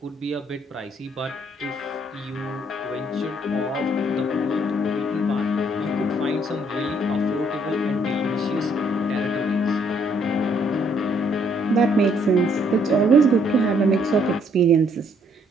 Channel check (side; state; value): both; normal; correlation 0.67